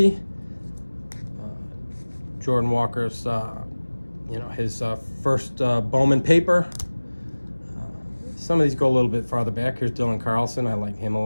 Jordan Walker's, his first Bowman paper. Some of these go a little bit farther back. Here's Dylan Carlson. I like him a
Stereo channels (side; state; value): both; inverted; correlation -1.00